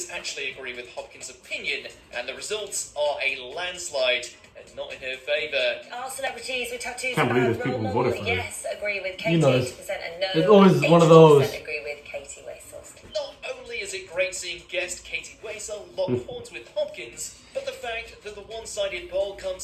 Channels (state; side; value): identical; both; correlation 1.00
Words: actually agree with Hopkins' opinion, and the results are a landslide, and not in her favour. Are celebrities with tattoos Can't believe a there's bad people role who model? voted for her. Yes, agree with Katie, You know, 80% and no. there's always one of those. 80% agree with Katie Wessels. Not only is it great seeing guest Katie Waisel lock horns with Hopkins, but the fact that the one-sided poll